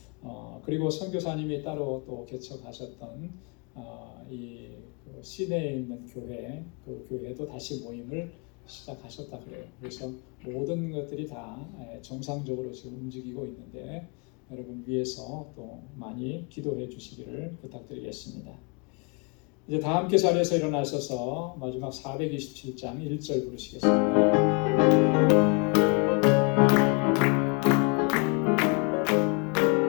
그리고 선교사님이 따로 또 개척하셨던 그 시내에 있는 교회, 그 교회도 다시 모임을 시작하셨다 그래요. 그래서 모든 것들이 다 정상적으로 지금 움직이고 있는데 여러분 위해서 또 많이 기도해 주시기를 부탁드리겠습니다. 이제 다 함께 자리에서 일어나셔서 마지막 427장 1절 부르시겠습니다.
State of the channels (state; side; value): quieter; right; 33.0 dB